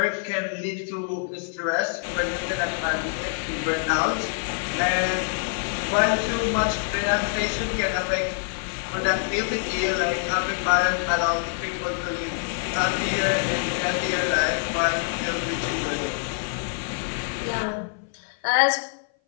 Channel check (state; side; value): silent; right; 57 dB below the other